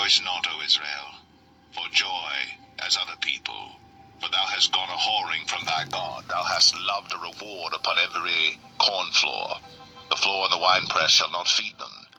not, O Israel, for joy as other people. For thou hast gone a whoring from thy God. Thou hast loved a reward upon every corn floor. The floor and the winepress shall not feed them,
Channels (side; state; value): both; identical; correlation 1.00